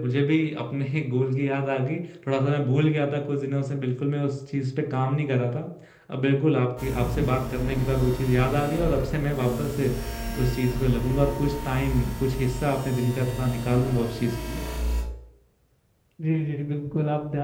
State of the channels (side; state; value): both; identical; correlation 1.00